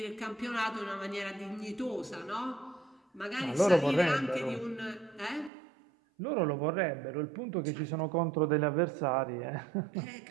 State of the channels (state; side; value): drops out; left; at 5.5 s